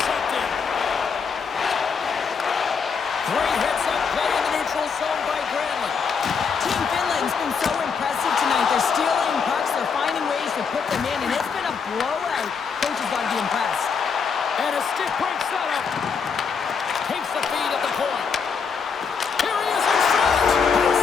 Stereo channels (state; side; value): quieter; right; 5.9 dB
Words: Great heads-up play in the neutral zone by Granlund. Team Finland's been so impressive tonight. They're stealing pucks. They're finding ways to put them in, and it's been a blowout. Coach has got to be impressed. And a stick break setup. Takes the feed at the point. Here he is in front. He